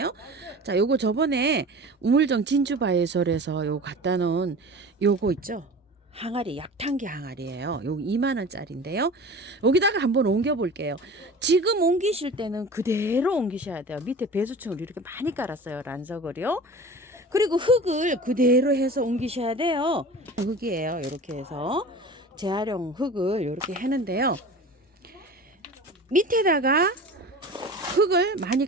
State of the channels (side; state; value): both; normal; correlation 0.37